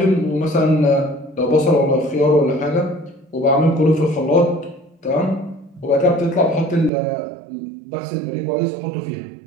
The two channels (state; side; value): drops out; left; at 6.9 s